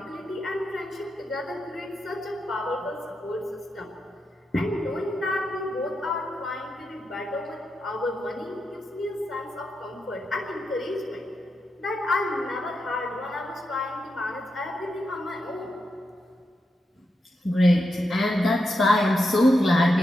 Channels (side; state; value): both; normal; correlation 0.85